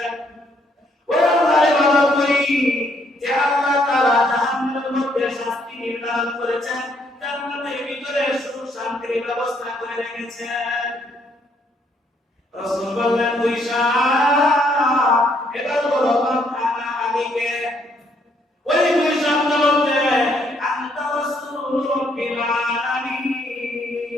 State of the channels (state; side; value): normal; both; correlation 0.70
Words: ওই আল্লাহর ইবাদত করি যে আল্লাহ তাআলা জাহান্নামের মধ্যে শাস্তি নির্ধারণ করেছেন, জান্নাতের ভিতরে সুখ শান্তির ব্যবস্থা করে রেখেছেন। রাসূল বললেন, কুইশা, এবার বলো বাবা আলীকে। ওই কুইশা বলতে, আনতা রাসূলুর রাব্বিল আলামিন